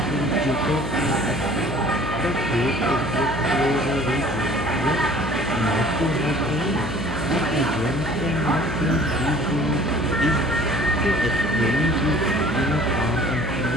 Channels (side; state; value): left; noise; hum, 6 dB below the sound